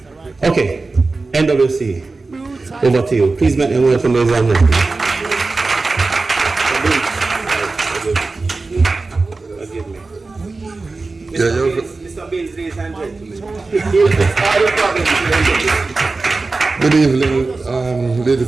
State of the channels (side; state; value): left; quieter; 3.7 dB